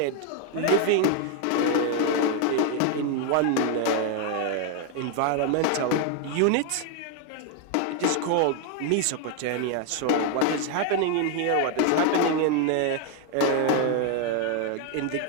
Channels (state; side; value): different; both; correlation 0.01